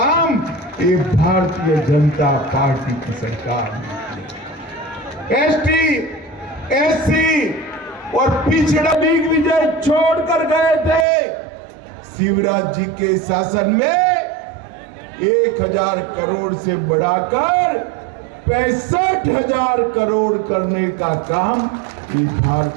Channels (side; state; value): left; drops out; at 11.1 s